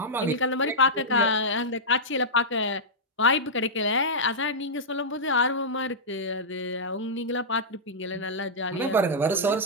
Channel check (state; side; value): normal; both; correlation -0.10